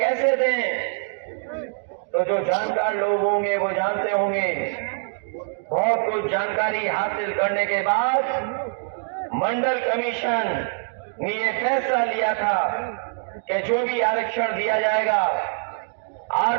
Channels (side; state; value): left; silent; digital silence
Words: दें। तो जो जानकार लोग होंगे वो जानते होंगे। बहुत कुछ जानकारी हासिल करने के बाद मंडल कमीशन ने ये फैसला लिया था कि जो भी आरक्षण दिया जाएगा